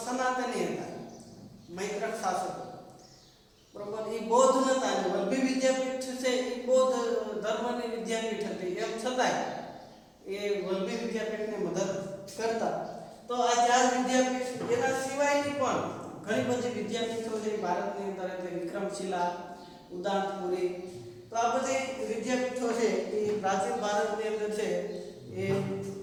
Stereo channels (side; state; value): both; identical; correlation 1.00